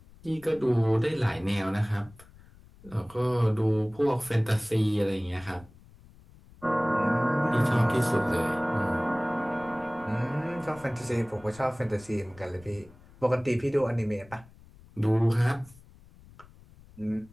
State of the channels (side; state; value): left; noise; rumble, 23 dB below the sound